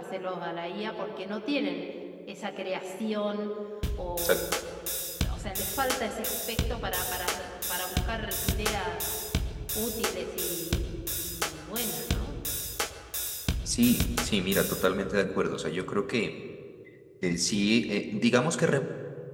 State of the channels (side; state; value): both; identical; correlation 1.00